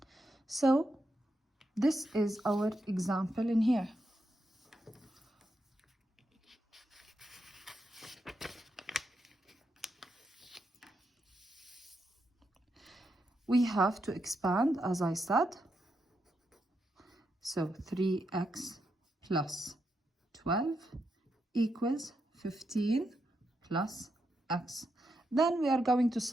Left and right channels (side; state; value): both; normal; correlation 0.83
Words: So this is our example in here. We have to expand, as I said. So 3x plus 12 equals 15 plus x. Then we are going to